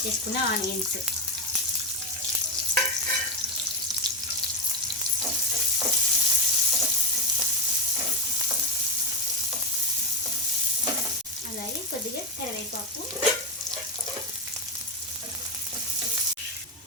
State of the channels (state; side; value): normal; both; correlation 0.11